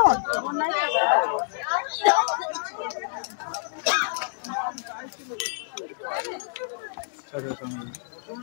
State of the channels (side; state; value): right; silent; digital silence